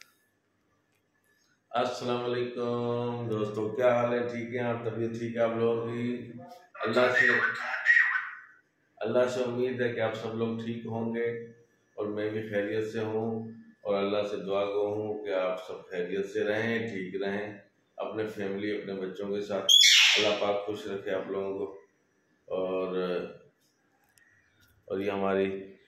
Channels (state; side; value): identical; both; correlation 1.00